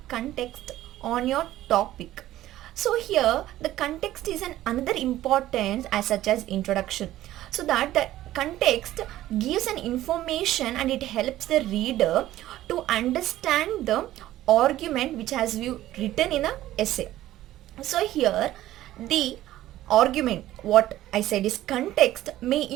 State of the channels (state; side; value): quieter; left; 14.4 dB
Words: context on your topic. So here the context is an another importance as such as introduction, so that the context gives an information and it helps the reader to understand the argument which has you written in a essay. So here the argument, what I said is context, may